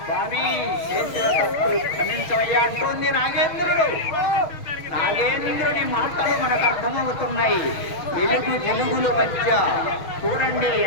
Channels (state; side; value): late; right; 6.1 ms